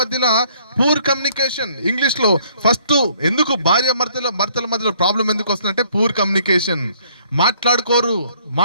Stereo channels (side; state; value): both; inverted; correlation -0.63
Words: పూర్ కమ్యూనికేషన్. ఇంగ్లీష్ లో ఫస్ట్ ఎందుకు భార్య భర్తల మధ్యలో ప్రాబ్లం ఎందుకు వస్తుందంటే పూర్ కమ్యూనికేషన్. మాట్లాడుకోరు,